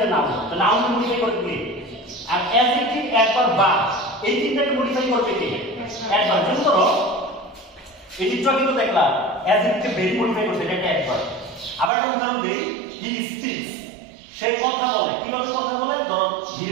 নাউন, তো নাউন মডিফাই করবে কি? আর অ্যাডজেক্টিভ, অ্যাডভার্ব, বা এই তিনটাকে মডিফাই করবে কি? অ্যাডভার্ব। যেমন ধরো এই চিত্র কিন্তু দেখলাম অ্যাডজেক্টিভকে ভেরি মডিফাই করছে, এটা একটা অ্যাডভার্ব। আবার একটা উদাহরণ দেই, হি স্পিক্স, সে কথা বলে। কিভাবে কথা বলে? ধরো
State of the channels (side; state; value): left; drops out; at 11.9 s